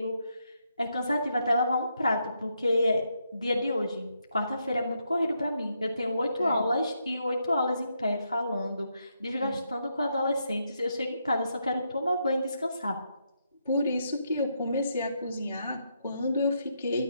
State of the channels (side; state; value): both; inverted; correlation -0.80